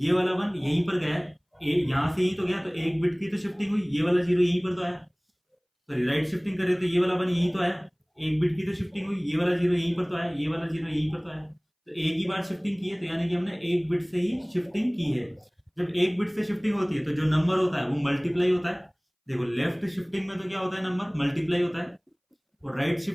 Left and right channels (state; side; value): identical; both; correlation 1.00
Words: वाला 1 यहीं पर गया है, यहाँ से यहीं तो गया, तो एक बिट की तो शिफ्टिंग हुई, ये वाला 0 यहीं पर तो आया, सॉरी राइट शिफ्टिंग करे तो ये वाला 1 यहीं तो आया, एक बिट की तो शिफ्टिंग हुई, ये वाला 0 यहीं पर तो आया, ये वाला 0 यहीं पर तो आया। तो एक ही बार शिफ्टिंग की है, तो यानी कि हमने एक बिट से ही शिफ्टिंग की है। जब एक बिट से शिफ्टिंग होती है तो जो नंबर होता है वो मल्टीप्लाई होता है। देखो लेफ्ट शिफ्टिंग में तो क्या होता है, नंबर मल्टीप्लाई होता है, और राइट